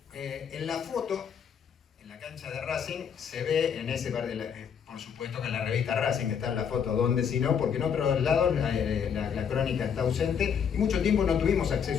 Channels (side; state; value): right; quieter; 7.3 dB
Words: En la foto, en la cancha de Racing, se ve en ese par por supuesto que en la revista Racing está en la foto, donde si no, porque en otros lados la crónica está ausente y mucho tiempo no tuvimos